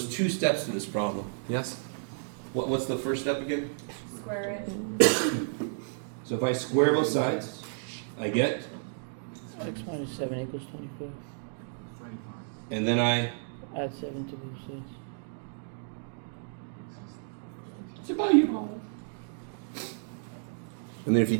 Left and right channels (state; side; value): silent; left; digital silence